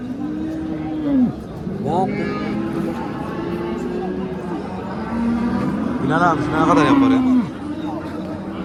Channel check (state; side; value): identical; both; correlation 1.00